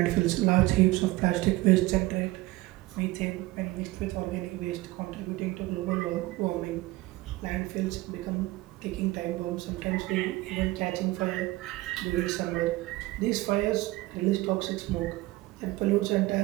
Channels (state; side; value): quieter; left; 19.4 dB